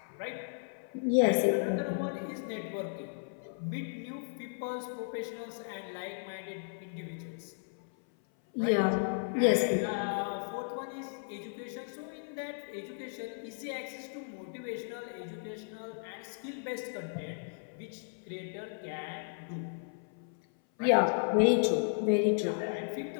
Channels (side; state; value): right; silent; 55 dB below the other